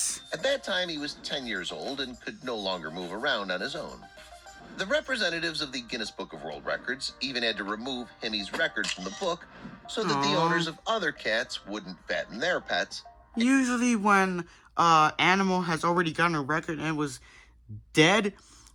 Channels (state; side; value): identical; both; correlation 1.00